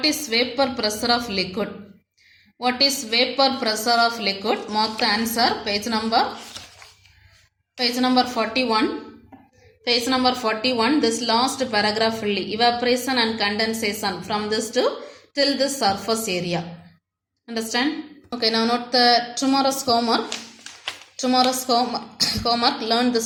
is vapor pressure of liquid? What is vapor pressure of liquid? Mark the answer. Page number 41. Page number 41, this last paragraph fully. Evaporation and condensation from this to till this surface area. Understand? Okay, now note the tomorrow's homework. Tomorrow's homework, learn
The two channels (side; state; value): both; identical; correlation 1.00